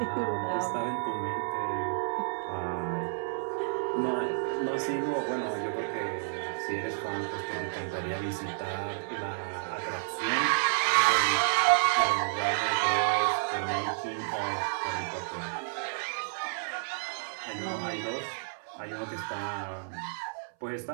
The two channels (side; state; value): left; silent; 57 dB below the other